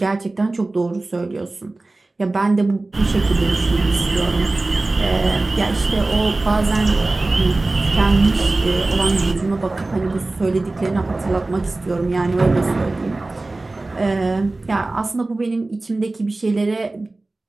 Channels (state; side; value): quieter; left; 3.1 dB